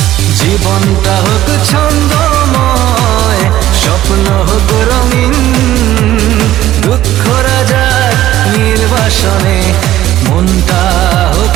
জীবনটা হোক ছন্দময়, স্বপ্ন হোক রঙিন, দুঃখরা যাক নির্বাসনে, মনটা হোক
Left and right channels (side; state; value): left; quieter; 13.8 dB